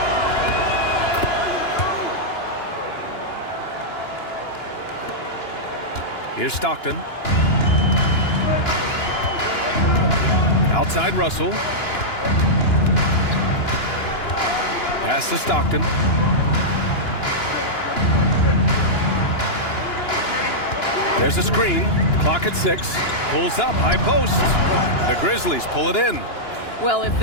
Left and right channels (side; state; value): right; late; 2.9 ms